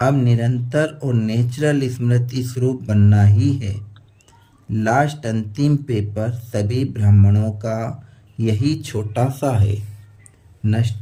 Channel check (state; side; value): identical; both; correlation 1.00